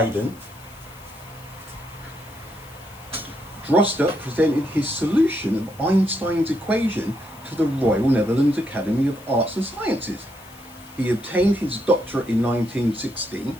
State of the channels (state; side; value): noise; left; hiss, 23 dB below the sound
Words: Droste presented his solution of Einstein's equation to the Royal Netherlands Academy of Arts and Sciences. He obtained his doctorate in 1916.